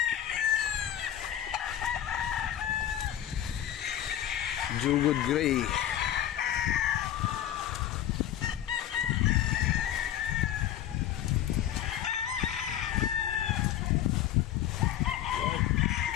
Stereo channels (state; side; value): quieter; right; 11.4 dB